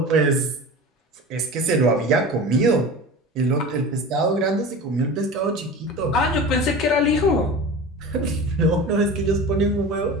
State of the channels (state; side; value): normal; both; correlation 0.33